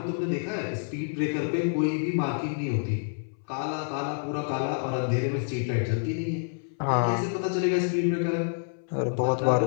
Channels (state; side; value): silent; right; 59 dB below the other